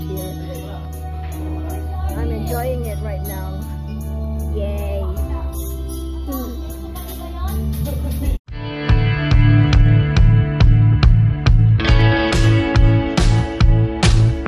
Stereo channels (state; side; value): identical; both; correlation 1.00